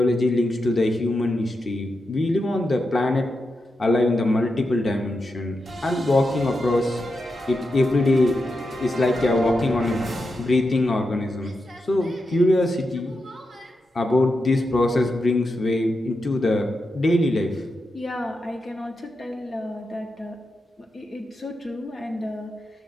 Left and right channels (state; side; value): normal; both; correlation 0.87